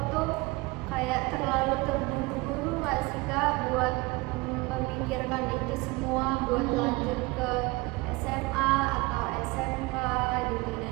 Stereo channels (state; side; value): quieter; left; 23.7 dB